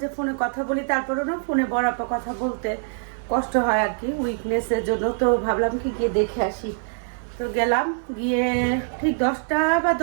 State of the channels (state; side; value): silent; left; 63 dB below the other